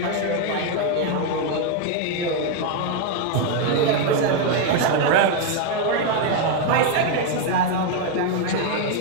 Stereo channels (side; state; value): both; different; correlation 0.01